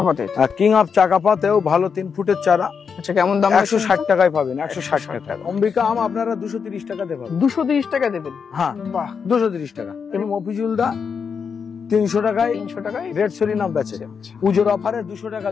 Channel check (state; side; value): quieter; right; 6.2 dB